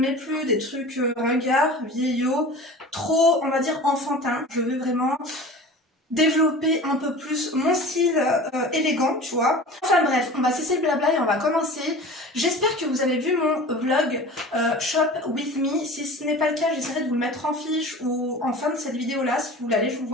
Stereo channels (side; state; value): both; normal; correlation 0.38